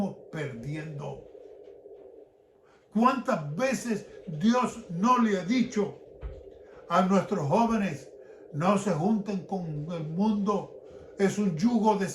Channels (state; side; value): identical; both; correlation 1.00